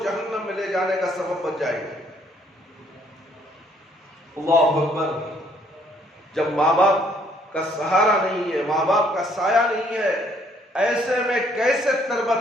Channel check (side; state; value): both; normal; correlation 0.65